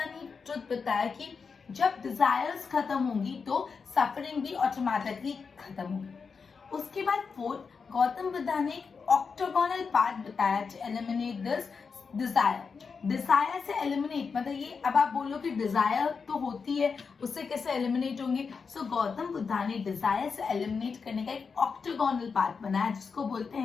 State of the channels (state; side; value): quieter; right; 5.4 dB